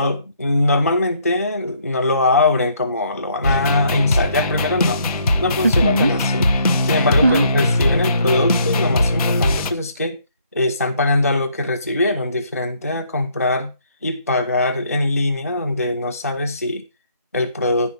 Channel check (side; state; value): both; inverted; correlation -0.67